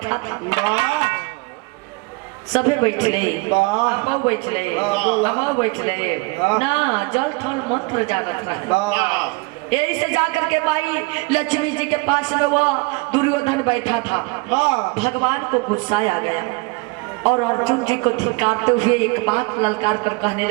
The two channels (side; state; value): left; quieter; 27.2 dB